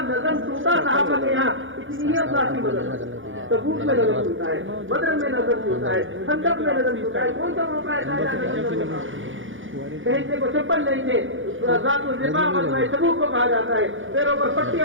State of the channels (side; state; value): left; late; 0.57 ms